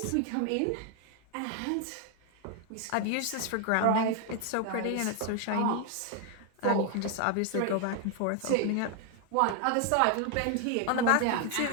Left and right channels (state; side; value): different; both; correlation 0.00